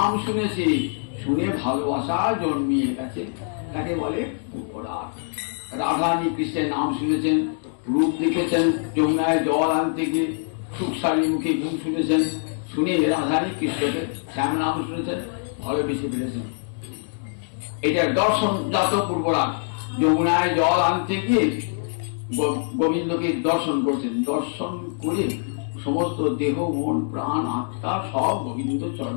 শুনেছে, শুনে ভালোবাসা জন্মিয়ে গেছে, তাকে বলে পূর্বরাগ। রাধারানী কৃষ্ণের নাম শুনেছেন, রূপ দেখেছেন, যমুনায় জল আনতে গিয়ে সুখসারী মুখে গুণ শুনেছেন, শুনে রাধারানী কৃষ্ণকে শ্যাম নাম শুনেছেন, ভালোবেসে ফেলেছেন। এটা দর্শন জাত পূর্বরাগ। যমুনায় জল আনতে গিয়ে গোবিন্দকে দর্শন করেছেন, দর্শন করে সমস্ত দেহ মন প্রাণ আত্মা সব গোবিন্দ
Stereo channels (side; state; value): right; silent; digital silence